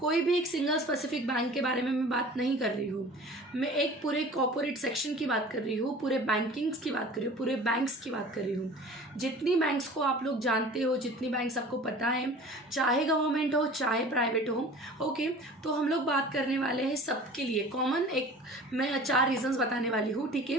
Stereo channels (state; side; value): normal; both; correlation 0.43